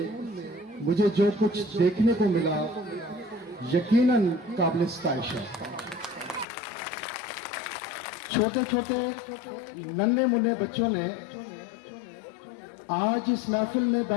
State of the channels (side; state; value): right; drops out; at 6.5 s